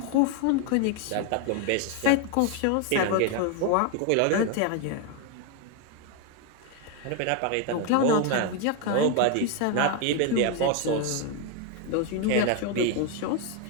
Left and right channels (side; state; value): both; different; correlation 0.01